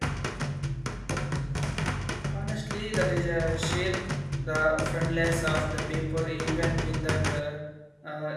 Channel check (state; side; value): identical; both; correlation 1.00